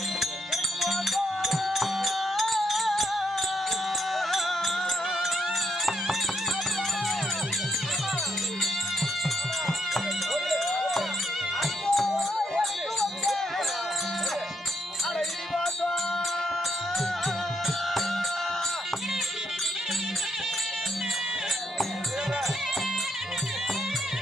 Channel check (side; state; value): both; normal; correlation 0.75